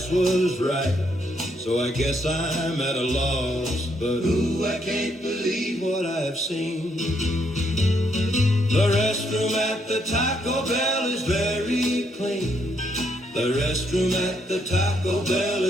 was right, so I guess I'm at a loss. But ooh, I can't believe what I've seen. The restroom at the Taco Bell is very clean. The restroom at the Taco Bell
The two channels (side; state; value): both; normal; correlation 0.74